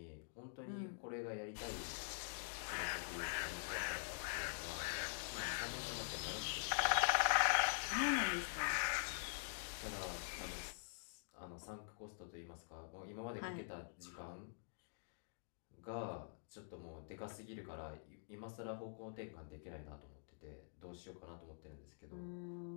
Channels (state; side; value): silent; right; digital silence